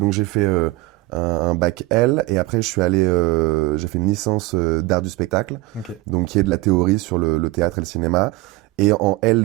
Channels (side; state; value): left; quieter; 20.0 dB